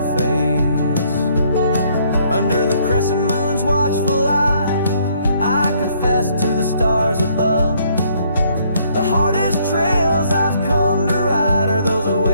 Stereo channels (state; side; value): inverted; both; correlation -0.66